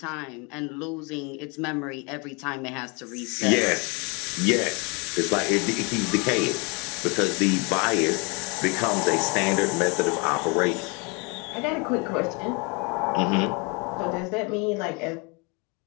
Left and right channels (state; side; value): quieter; right; 31.0 dB